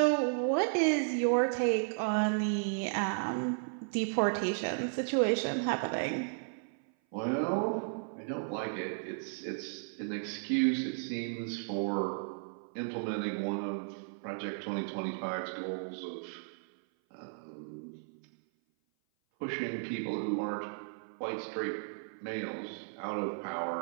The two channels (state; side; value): silent; left; 55 dB below the other